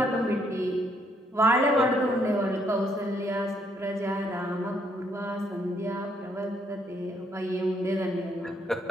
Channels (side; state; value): both; normal; correlation 0.72